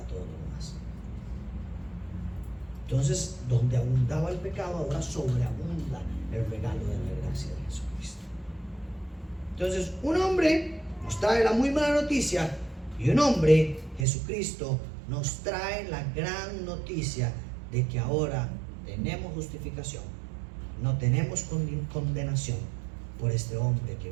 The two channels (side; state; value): left; drops out; at 14.1 s